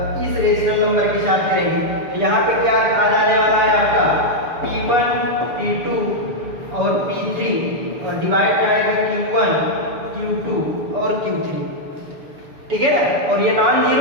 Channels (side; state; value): left; late; 6.9 ms